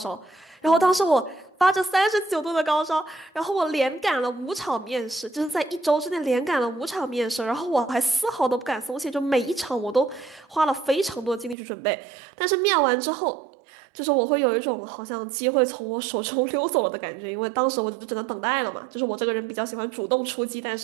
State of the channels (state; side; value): drops out; left; at 11.6 s